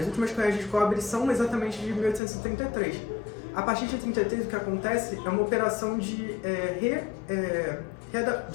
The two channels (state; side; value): drops out; right; at 2.2 s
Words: últimas cunhagens de cobre são exatamente de 1833. A partir de 33, o que acontece é uma operação de